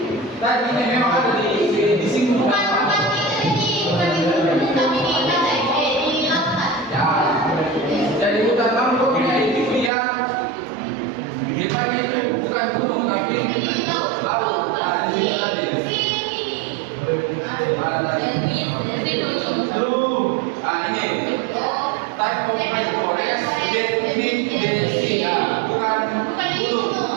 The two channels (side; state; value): left; drops out; at 9.9 s